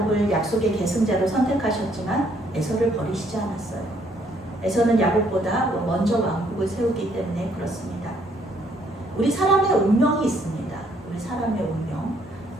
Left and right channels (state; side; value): normal; both; correlation 0.67